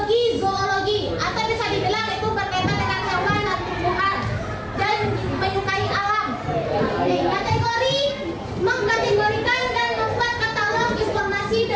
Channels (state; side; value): identical; both; correlation 1.00